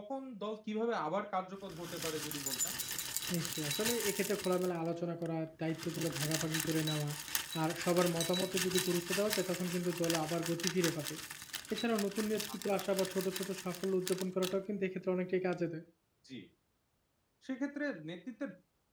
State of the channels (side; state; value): both; identical; correlation 1.00